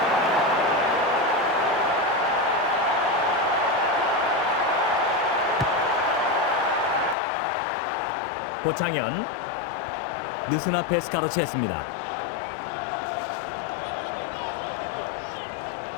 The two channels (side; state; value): right; drops out; at 7.2 s